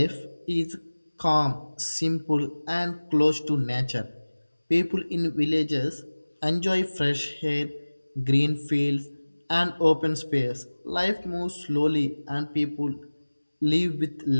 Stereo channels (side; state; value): both; inverted; correlation -1.00